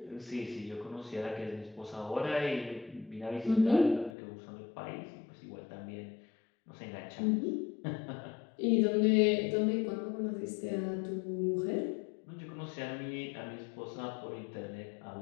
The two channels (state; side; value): drops out; right; at 4.1 s